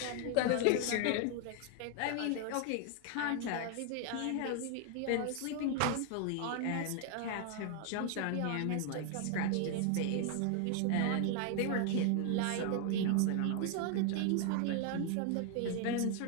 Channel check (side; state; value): both; different; correlation 0.00